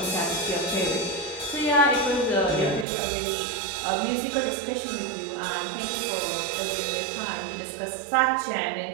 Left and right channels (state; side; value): drops out; left; at 2.9 s